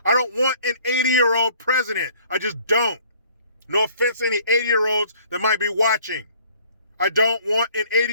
I don't want an 80-year-old president. I just don't. No offense to any 80-year-olds that might be watching. I don't want an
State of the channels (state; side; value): inverted; both; correlation -0.57